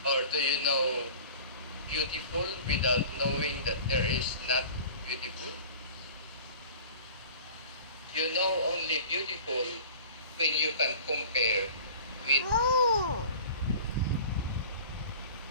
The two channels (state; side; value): inverted; both; correlation -0.41